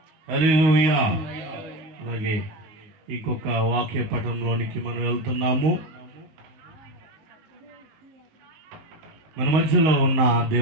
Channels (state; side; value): late; left; 19 ms